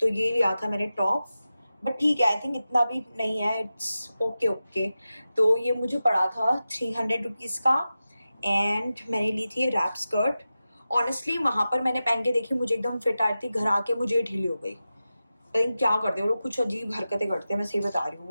ये लिया था मैंने टॉप, बट ठीक है, आई थिंक इतना भी नहीं है, इट्स ओके। तो ये मुझे पड़ा था 300 रुपीज़ का। एंड मैंने ली थी रैप स्कर्ट। ऑनेस्टली वहाँ पर मैंने पहन के देखी, मुझे एकदम फिट आ रही थी, घर आके मुझे ढीली हो गई। आई थिंक क्या करते हैं वो लोग, कुछ अजीब हरकतें करते हैं, मैं सही बता रही हूँ,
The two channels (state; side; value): inverted; both; correlation -0.93